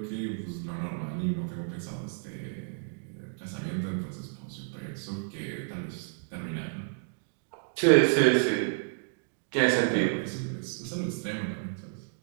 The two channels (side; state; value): left; silent; digital silence